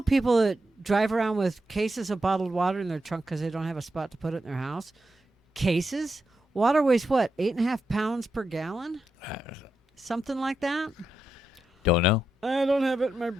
people that drive around with cases of bottled water in their trunk because they don't have a spot to put it in their house. Cases? Water weighs what, 8.5 pounds per gallon? Something like that? Don't know. I don't have it in my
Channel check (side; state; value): both; normal; correlation 0.85